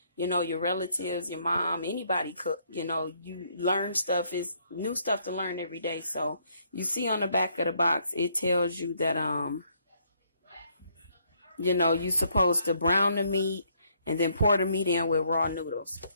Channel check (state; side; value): inverted; both; correlation -0.70